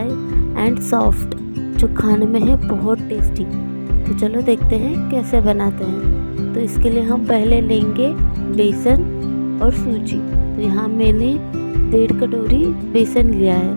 एंड सॉफ्ट, जो खाने में है बहुत टेस्टी। तो चलो देखते हैं कैसे बनाते हैं। तो इसके लिए हम पहले लेंगे बेसन और सूजी। तो यहाँ मैंने 1.5 कटोरी बेसन लिया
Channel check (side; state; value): both; inverted; correlation -1.00